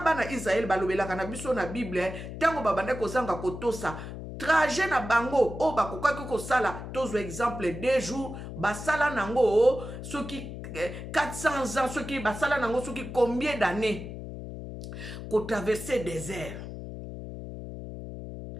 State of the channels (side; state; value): left; noise; hum, 9 dB below the sound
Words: Israël balobelaka na biso na Bible tango babanda kozanga kotosa trajet na bango o bakokaki kosala tozwa exemple 2 jours basala nango soki 400 ans, ceux qui basala nango, ceux qui combien d'années qu'on traverser désert.